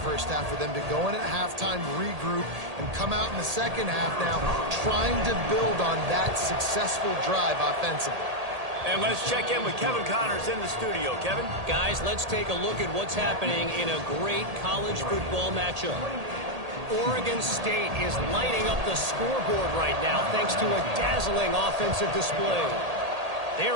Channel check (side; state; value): left; late; 1.8 ms